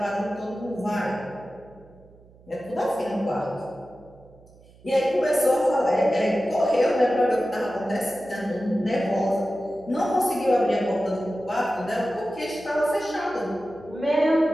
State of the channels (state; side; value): noise; right; hum, 26 dB below the sound